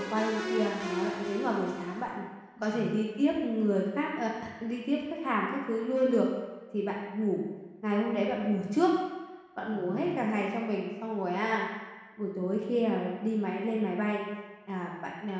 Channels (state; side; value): identical; both; correlation 1.00